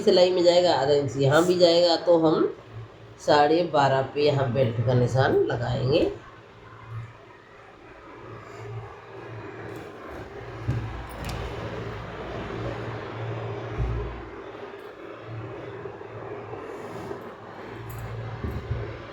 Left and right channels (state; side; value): identical; both; correlation 1.00